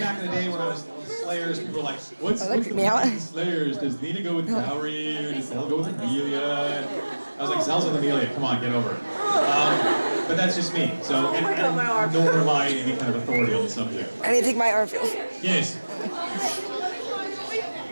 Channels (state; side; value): inverted; both; correlation -1.00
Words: in the day when I was on Slayers, people were like, what's the freaked me out. point of Slayers? Does Nina go with Dowry, or does Zell go with Amelia? I was like, Zell's with Amelia, come on, get over it. But that's just me. So, and nor am I any kind of authority on the subject. I didn't think my arm feels. Yes.